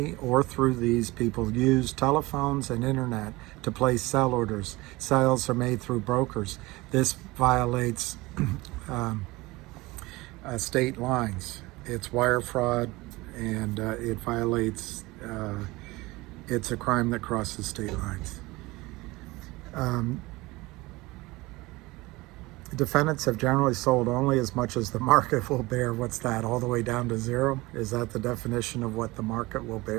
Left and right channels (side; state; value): left; quieter; 21.5 dB